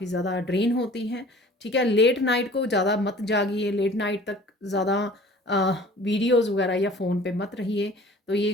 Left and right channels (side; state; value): both; normal; correlation 0.47